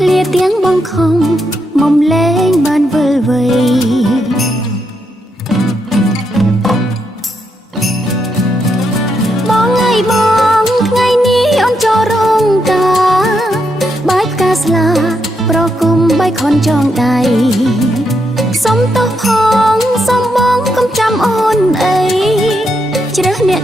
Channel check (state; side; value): normal; both; correlation 0.81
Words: ្លាទាំងបងខំមុំលែងបានវិលវ័យបងថ្ងៃថ្ងៃនេះអូនចូលរោងការបាយផ្កាស្លាប្រគុំបៃខនចងដៃសុំទោសផងសុំបងកុំចាំអូនអីជ្រើសអ្នក